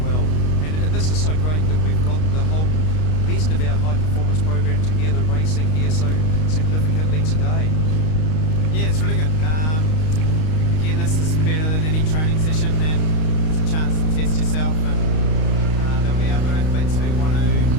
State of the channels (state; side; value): late; right; 32 ms